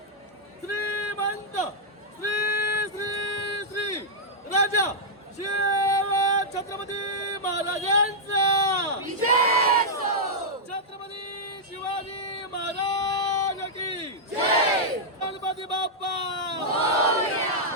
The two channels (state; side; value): normal; both; correlation -0.07